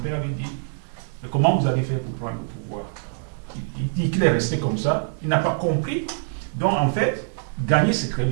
lui dit, mais comment vous avez fait pour prendre le pouvoir? Il dit qu'il est resté comme ça. Il n'a pas compris. Donc en fait, gagner c'est très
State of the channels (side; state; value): left; silent; digital silence